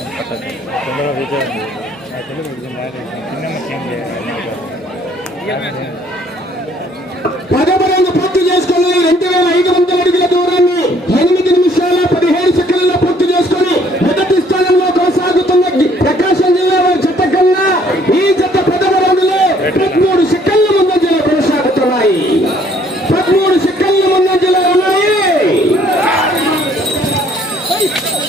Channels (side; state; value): both; normal; correlation 0.62